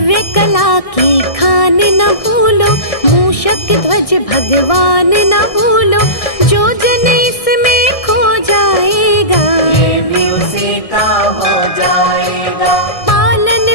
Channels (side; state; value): right; late; 1.6 ms